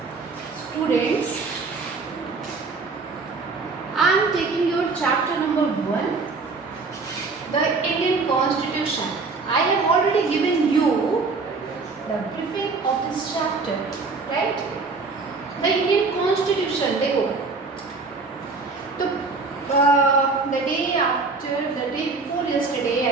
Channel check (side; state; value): left; quieter; 4.1 dB